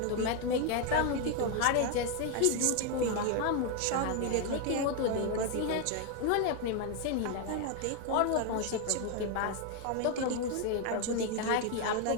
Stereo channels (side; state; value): both; different; correlation 0.01